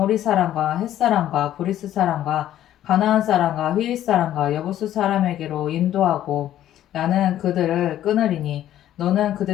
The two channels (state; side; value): quieter; right; 12.2 dB